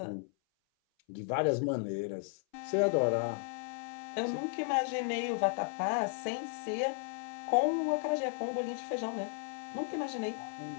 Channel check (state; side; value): silent; right; 55 dB below the other